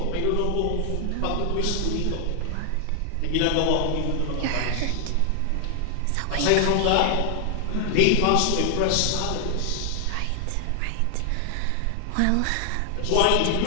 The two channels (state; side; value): different; both; correlation 0.00